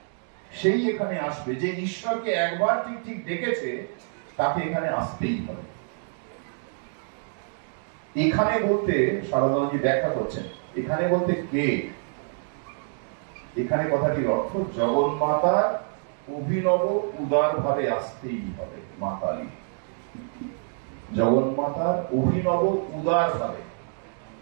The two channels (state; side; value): silent; left; 60 dB below the other